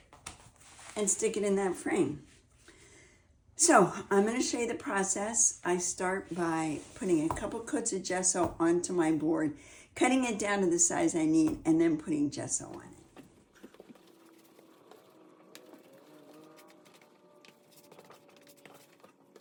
and stick it in that frame. So I'm going to show you the process. I start by putting a couple coats of gesso onto my board, cutting it down to the size I need, and then putting gesso on it.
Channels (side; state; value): both; identical; correlation 1.00